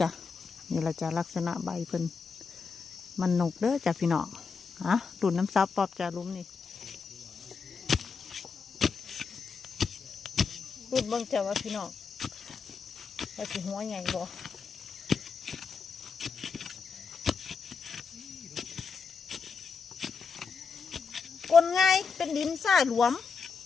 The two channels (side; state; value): right; quieter; 5.3 dB